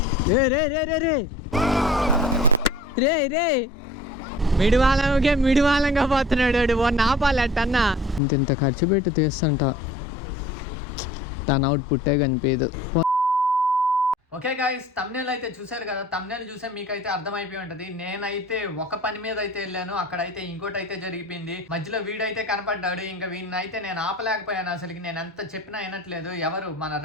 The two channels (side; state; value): both; normal; correlation 0.46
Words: రే మిడివాలంగా పోతున్నాడు వాడిని ఆపాలి అట్టన్నా. ఇంత ఖర్చు పెట్టి తీస్తుంట తన అవుట్పుట్టే కనిపించదు. ఓకే గైస్, థంబ్నెయిల్ అయితే చూసారు కదా. థంబ్నెయిల్ చూసే మీకైతే అర్థమైపోయి ఉంటది. నేనైతే ఒక పని మీద అయితే వెళ్ళాను, అక్కడైతే ఇంకోటి అయితే జరిగిపోయింది. మధ్యలో వీడైతే కనపడ్డాడు. ఇంకా వీడిని అయితే నేను ఆపలేకపోయాను. అసలుకి నేను ఎంత చెప్పినా వినట్లేదు. ఎవరు మన